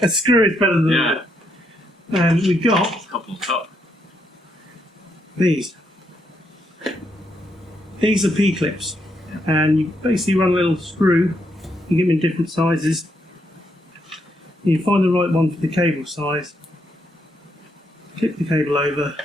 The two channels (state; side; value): normal; both; correlation 0.77